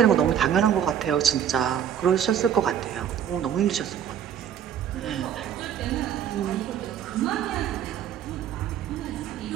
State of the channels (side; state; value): left; quieter; 9.3 dB